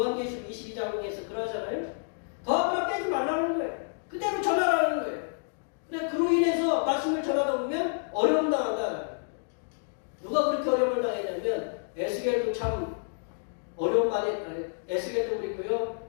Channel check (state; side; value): silent; right; digital silence